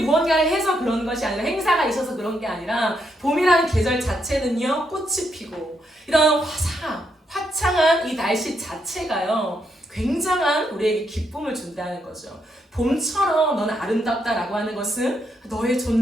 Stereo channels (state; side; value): normal; both; correlation 0.78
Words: 해서 그런 것이 아니라, 행사가 있어서 그런 게 아니라, 봄이라는 계절 자체는요, 꽃이 피고 이런 화창한 이 날씨 자체가요, 굉장한 우리에게 기쁨을 준다는 거죠. 봄처럼 너는 아름답다라고 하는 것은 너의